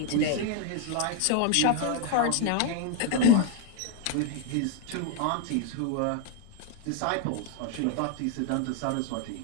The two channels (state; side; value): different; both; correlation 0.01